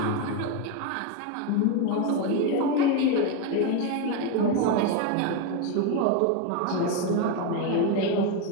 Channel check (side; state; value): both; different; correlation 0.03